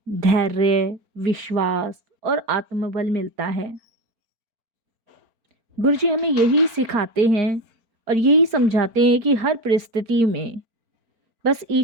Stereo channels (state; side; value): late; left; 4.4 ms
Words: धैर्य, विश्वास और आत्मबल मिलता है। गुरुजी हमें यही सिखाते हैं और यही समझाते हैं कि हर परिस्थिति में बस